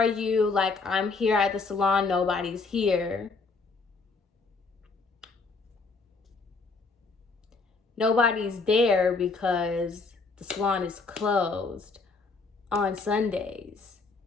you? Like, I'm here at the salon. Nobody's here. Nobody's there because the salon is closed on Sundays.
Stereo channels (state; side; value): quieter; right; 4.1 dB